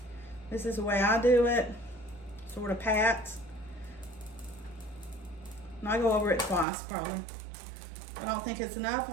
This is the way I do it. Sort of pats. And I go over it twice probably. If I don't think it's enough,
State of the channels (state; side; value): drops out; left; at 6.7 s